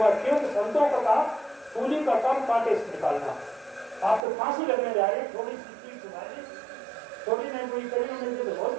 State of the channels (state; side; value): drops out; left; at 4.2 s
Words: संतों का काम सूली का काम कांटे से निकालना। आप तो फांसी लगने जा रहे, थोड़ी सी चीज सुनाई, थोड़ी नहीं कोई करी मिलती तो बहुत